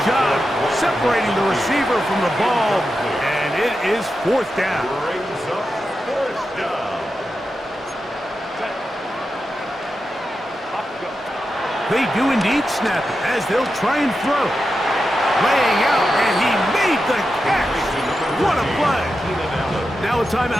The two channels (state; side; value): normal; both; correlation 0.89